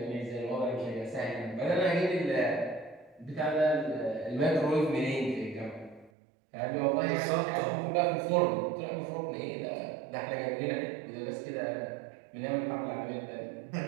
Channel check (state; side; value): drops out; left; at 6.1 s